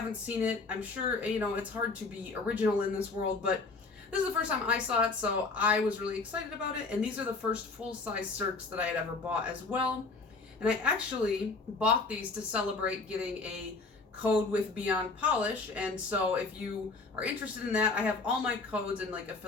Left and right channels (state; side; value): quieter; right; 3.9 dB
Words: seen it. I'm sure, it's hard to be original in this world, but this is the first time I saw it, so I was really excited about it. And these are the first full-size Cirques that I had ever bought as well. And I actually bought these to celebrate getting a code with Beyond Polish. And so if you are interested in that, I have all my codes and like